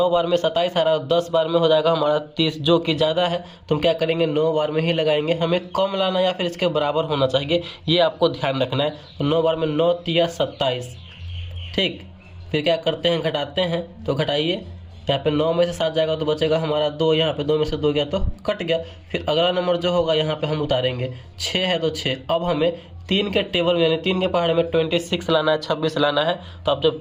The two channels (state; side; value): identical; both; correlation 1.00